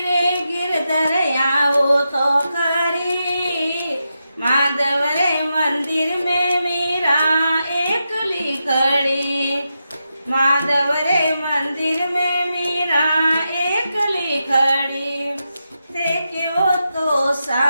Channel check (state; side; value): inverted; both; correlation -0.87